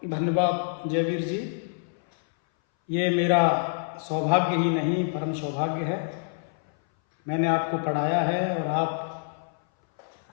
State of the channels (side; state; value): right; silent; 59 dB below the other